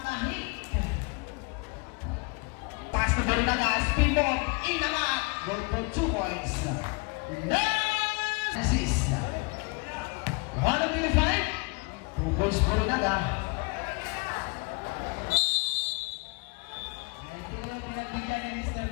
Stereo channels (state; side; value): quieter; right; 30.5 dB